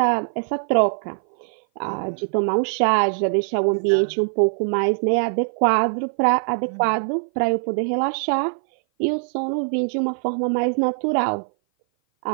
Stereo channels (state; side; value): silent; left; 57 dB below the other